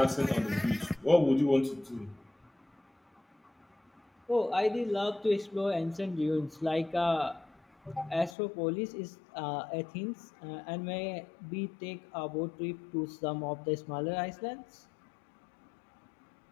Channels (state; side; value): drops out; right; at 8.3 s